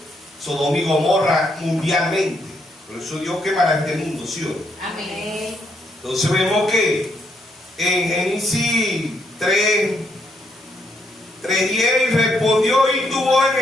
Sodoma y Gomorra mundialmente. Por eso Dios quemará este mundo, ¿sí o no? Amén. Entonces vemos que en Génesis 3:10 respondió: y tuvo en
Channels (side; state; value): both; normal; correlation 0.75